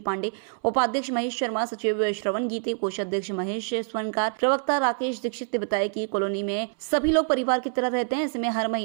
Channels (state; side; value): silent; left; 61 dB below the other